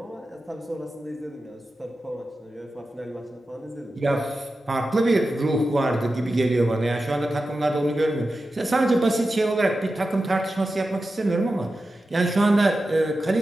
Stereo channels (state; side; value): normal; both; correlation 0.92